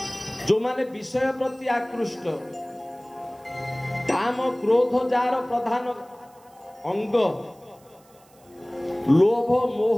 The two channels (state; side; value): noise; right; hiss, 30 dB below the sound